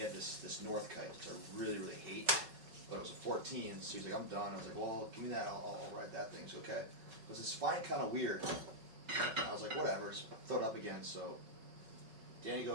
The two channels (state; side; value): late; left; 5.3 ms